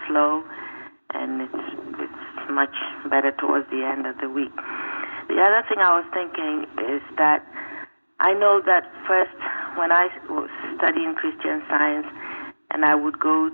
slow, and it's much better towards the end of the week. The other thing I was thinking is that I know that first when I was studying Christian Science and I would go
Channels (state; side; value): inverted; both; correlation -1.00